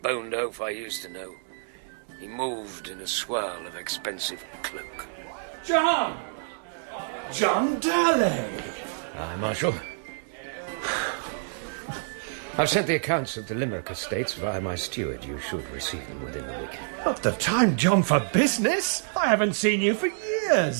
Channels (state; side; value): silent; left; 60 dB below the other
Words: boned oaf I used to know. He moved in a swirl of expensive cloak. John! John Darley! Aye, Marshal. I've sent the accounts of the Limerick estates via my steward. You should receive them within the week. Not the time, John, for business. I haven't seen you for